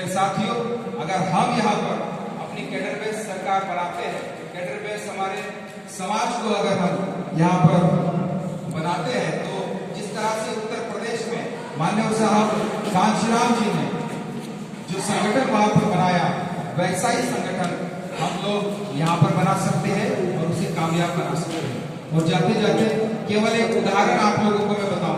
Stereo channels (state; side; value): identical; both; correlation 1.00